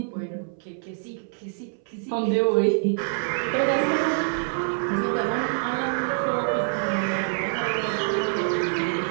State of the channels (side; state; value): left; silent; 61 dB below the other